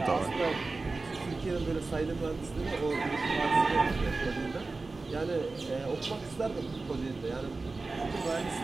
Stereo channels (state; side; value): quieter; left; 3.7 dB